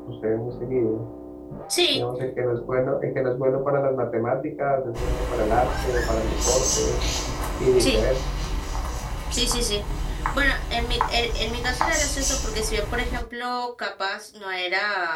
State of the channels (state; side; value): identical; both; correlation 1.00